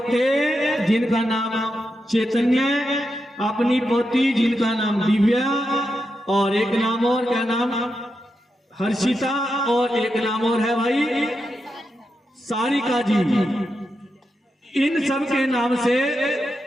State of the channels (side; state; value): both; normal; correlation 0.87